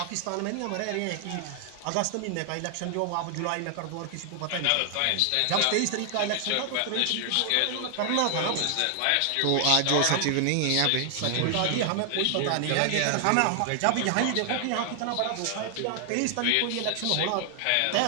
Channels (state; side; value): different; both; correlation 0.00